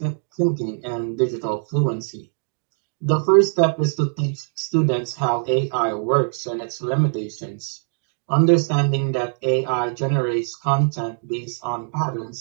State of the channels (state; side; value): silent; left; digital silence